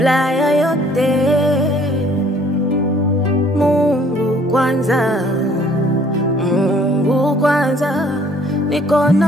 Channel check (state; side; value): normal; both; correlation 0.58